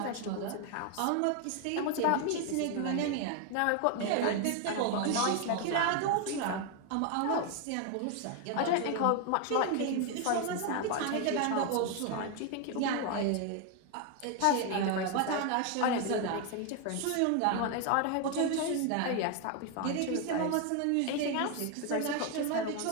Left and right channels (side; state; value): both; different; correlation 0.01